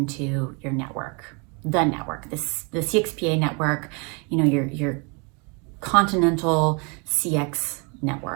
your network, the CXPA network, your continental CX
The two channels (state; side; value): quieter; left; 32.7 dB